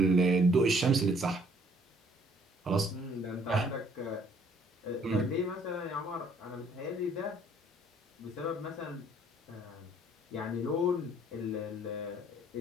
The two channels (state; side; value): normal; both; correlation 0.61